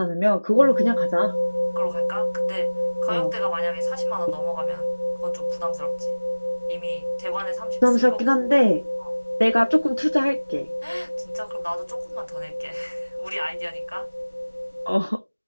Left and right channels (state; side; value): inverted; both; correlation -1.00